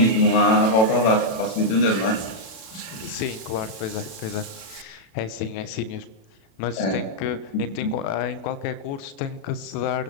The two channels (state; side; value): late; right; 36 ms